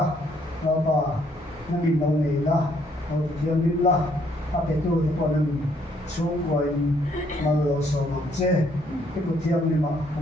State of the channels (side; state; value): both; normal; correlation 0.68